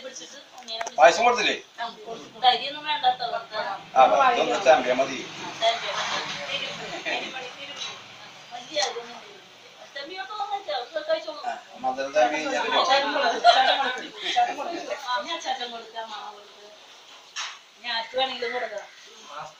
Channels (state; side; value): identical; both; correlation 1.00